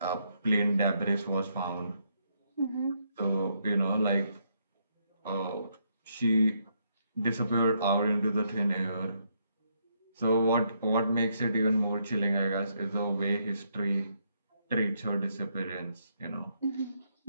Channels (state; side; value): inverted; both; correlation -0.75